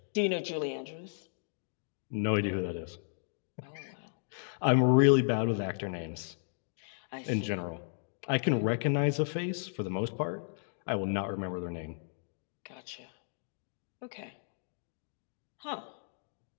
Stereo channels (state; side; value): silent; right; digital silence